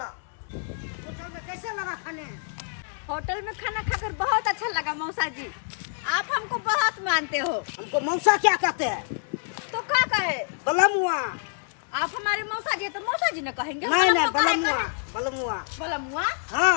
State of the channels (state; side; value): silent; right; 60 dB below the other